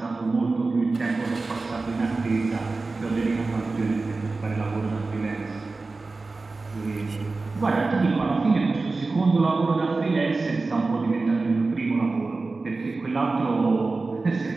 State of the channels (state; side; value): quieter; left; 3.7 dB